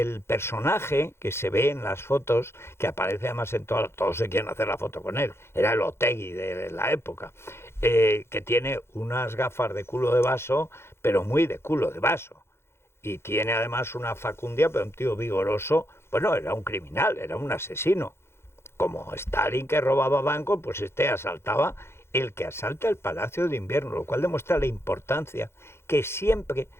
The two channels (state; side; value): late; right; 0.12 ms